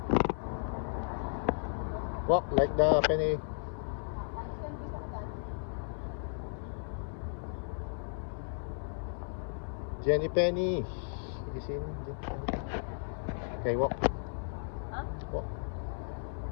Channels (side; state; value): right; silent; 55 dB below the other